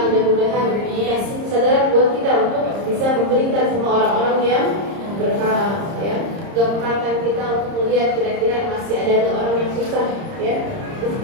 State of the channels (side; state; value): left; late; 30 ms